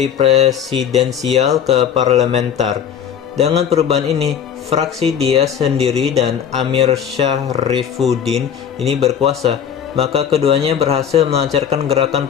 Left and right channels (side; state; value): right; quieter; 8.3 dB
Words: presidensial ke parlementer. Dengan perubahan ini, fraksi dia sendiri dan Amir Syahrifuddin ini berkuasa. Maka keduanya berhasil melancarkan gerakan